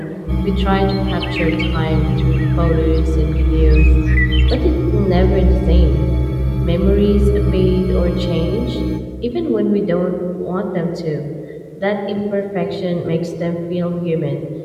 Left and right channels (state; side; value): identical; both; correlation 1.00